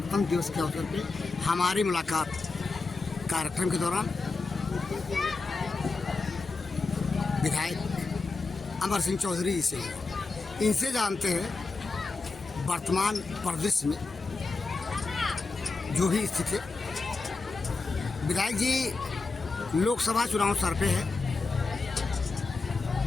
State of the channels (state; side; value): quieter; right; 3.9 dB